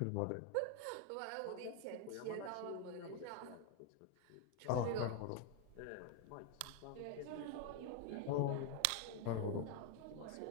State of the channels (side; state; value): both; different; correlation 0.01